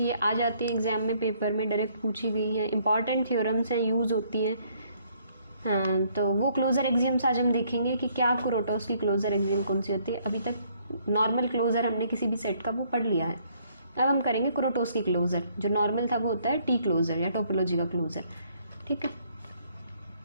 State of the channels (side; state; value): both; inverted; correlation -0.66